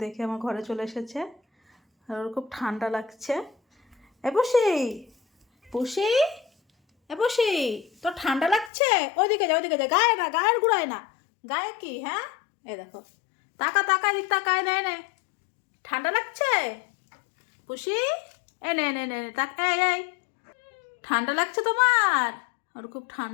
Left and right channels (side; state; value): right; drops out; at 8.7 s